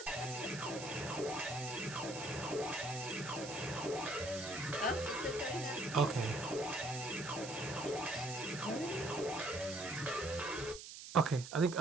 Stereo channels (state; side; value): noise; right; hiss, 11 dB below the sound